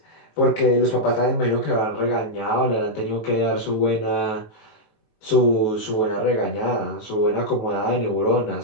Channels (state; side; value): late; right; 19 ms